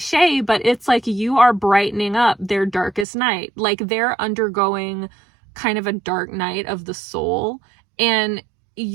but it's like you are brightening up their darkest night. Like they're undergoing kind of a dark night of the soul. And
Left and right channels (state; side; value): drops out; left; at 3.1 s